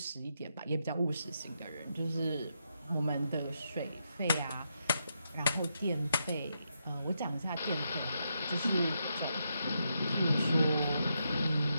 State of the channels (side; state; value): both; inverted; correlation -0.82